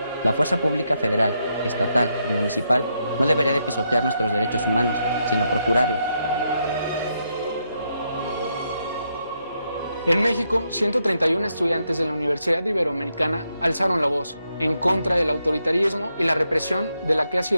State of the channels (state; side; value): inverted; both; correlation -0.80